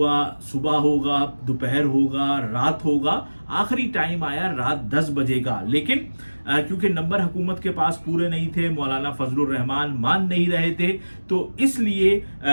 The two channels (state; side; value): inverted; both; correlation -1.00